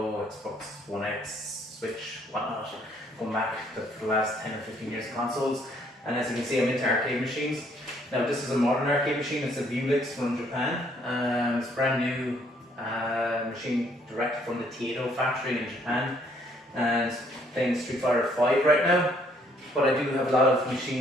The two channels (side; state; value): both; normal; correlation 0.66